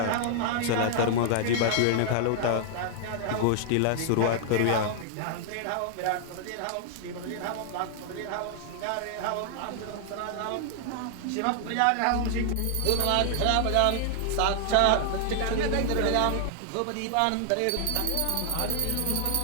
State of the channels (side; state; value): both; different; correlation 0.00